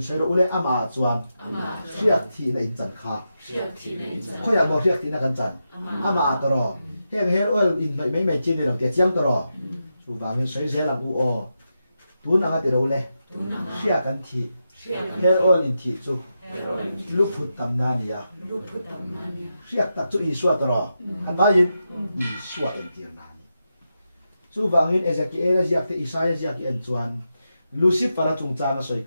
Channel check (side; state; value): both; inverted; correlation -0.88